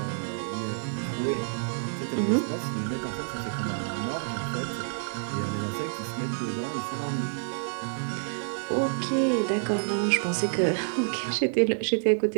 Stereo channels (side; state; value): left; silent; 59 dB below the other